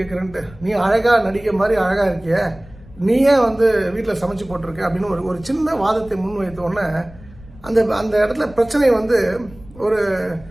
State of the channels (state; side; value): noise; left; rumble, 21 dB below the sound